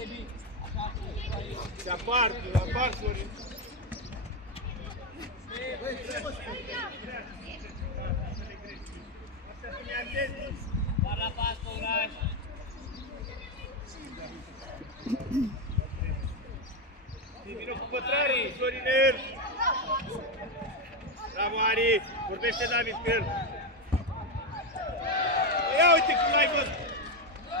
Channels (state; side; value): normal; both; correlation 0.08